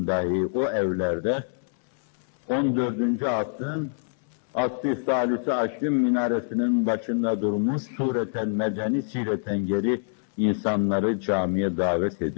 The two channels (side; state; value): right; silent; 61 dB below the other